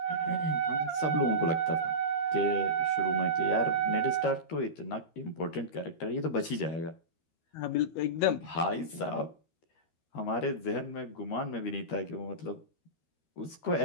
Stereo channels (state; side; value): late; right; 13 ms